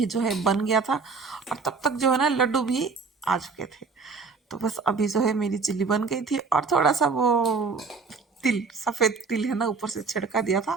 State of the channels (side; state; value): left; quieter; 4.7 dB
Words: जो है बन गया था, और तब तक जो है ना लड्डू भी आ चुके थे। तो बस अभी जो है मेरी चिल्ली बन गई थी, और थोड़ा सा वो तिल, सफ़ेद तिल है ना ऊपर से छिड़का दिया था।